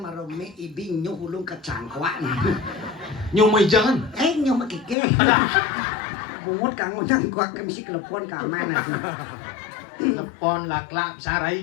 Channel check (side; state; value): right; drops out; at 5.0 s